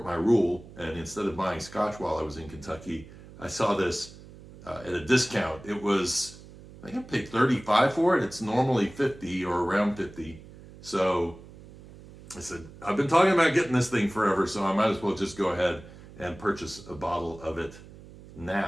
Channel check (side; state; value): right; noise; hum, 19 dB below the sound